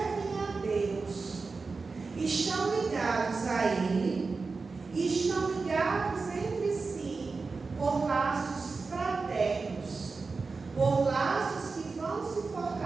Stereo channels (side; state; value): left; quieter; 4.3 dB